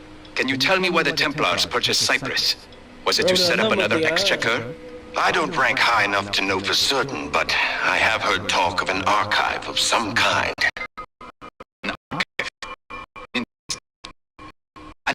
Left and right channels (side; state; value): both; identical; correlation 1.00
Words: Can you tell me why the Templars purchased Cyprus? Was it to set up another exchequer? I don't rank high enough to know for certain, but I have heard talk of an archive of some kind. An archive?